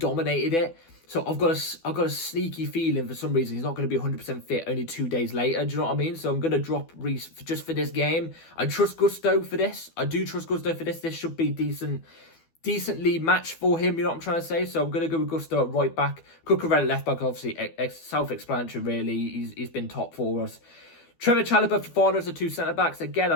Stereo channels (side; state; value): right; late; 12 ms